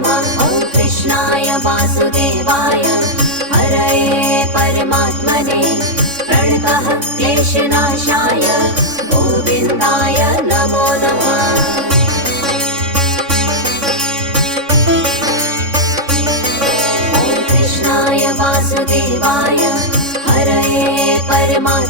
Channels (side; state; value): left; late; 3.6 ms